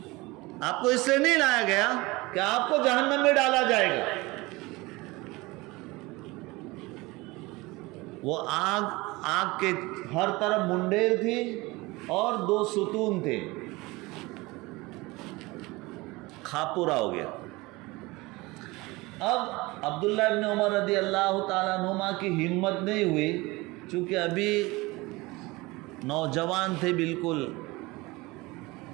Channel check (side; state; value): left; quieter; 22.4 dB